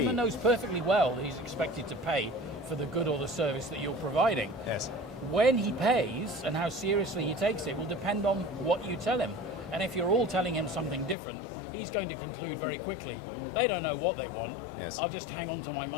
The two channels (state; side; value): drops out; right; at 11.2 s